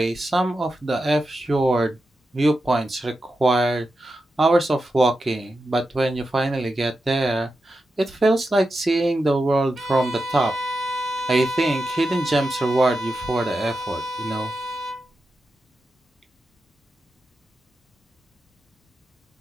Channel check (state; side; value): normal; both; correlation 0.89